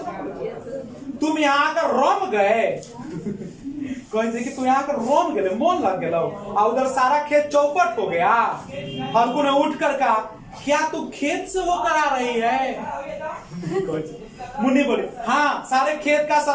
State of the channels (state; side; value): identical; both; correlation 1.00